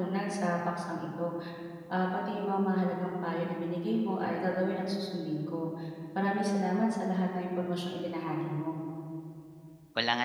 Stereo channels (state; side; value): identical; both; correlation 1.00